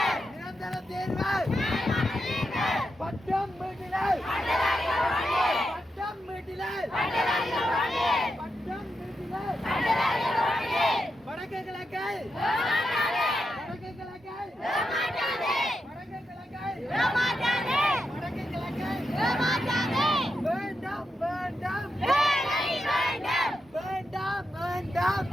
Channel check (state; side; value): normal; both; correlation 0.86